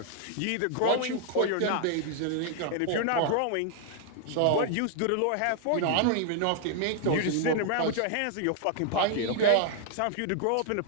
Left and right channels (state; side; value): different; both; correlation 0.00